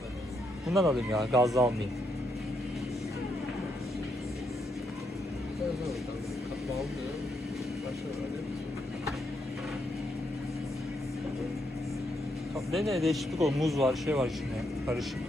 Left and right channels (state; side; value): normal; both; correlation 0.78